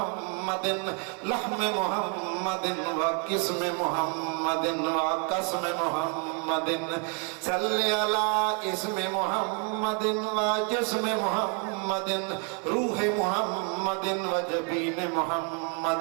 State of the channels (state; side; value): quieter; left; 38.6 dB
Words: لحم محمد وقسم محمد وقسم محمد صل على اسم محمد وجسم محمد روح محمد وجبين محمد